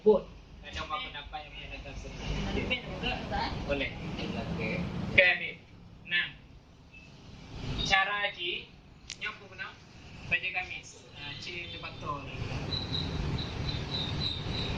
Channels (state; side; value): identical; both; correlation 1.00